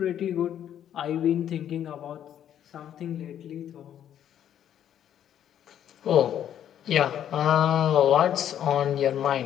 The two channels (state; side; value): quieter; right; 10.2 dB